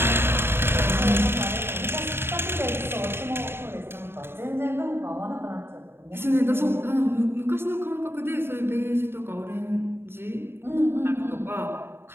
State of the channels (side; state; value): left; late; 0.11 ms